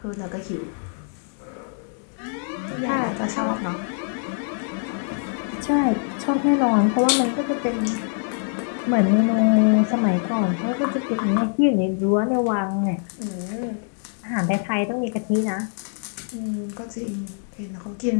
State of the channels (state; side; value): silent; right; 63 dB below the other